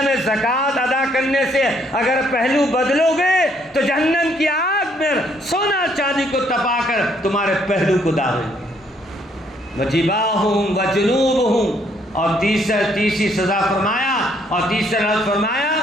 میں زکوٰۃ ادا کرنے سے اگر پہلو بدلو گے تو جہنم کی آگ میں سونا چاندی کو تپا کر تمہارے پہلو کو داغیں گے. وجباہم وجنوبہم، اور تیسری سزا فرمایا اور تیسرا لفظ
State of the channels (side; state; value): both; normal; correlation 0.68